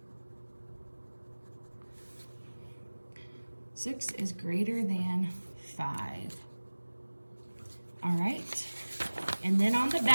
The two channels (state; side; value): inverted; both; correlation -1.00